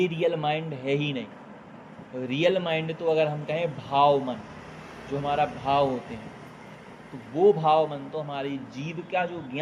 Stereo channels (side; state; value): both; identical; correlation 1.00